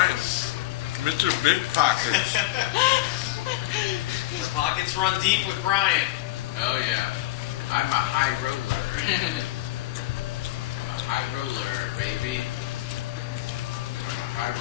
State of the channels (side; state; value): right; quieter; 16.9 dB